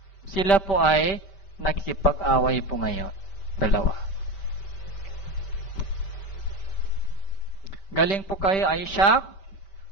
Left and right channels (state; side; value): late; right; 5.1 ms